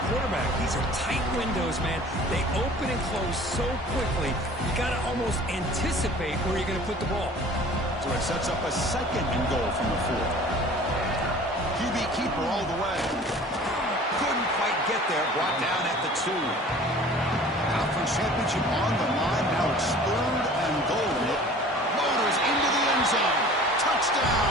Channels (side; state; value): both; normal; correlation 0.46